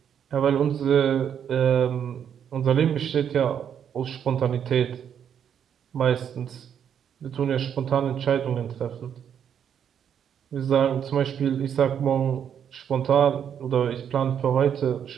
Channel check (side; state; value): left; quieter; 8.5 dB